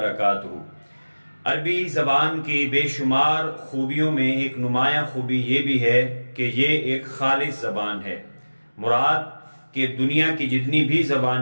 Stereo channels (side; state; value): both; inverted; correlation -1.00